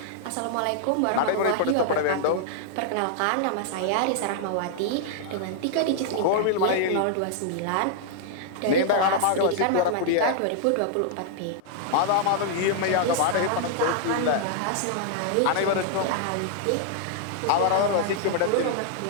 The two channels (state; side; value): different; both; correlation -0.01